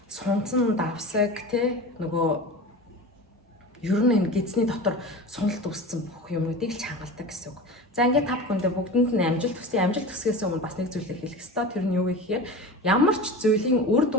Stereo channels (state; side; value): normal; both; correlation 0.32